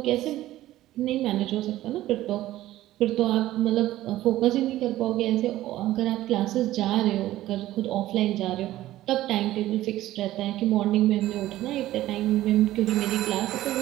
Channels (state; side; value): quieter; left; 15.0 dB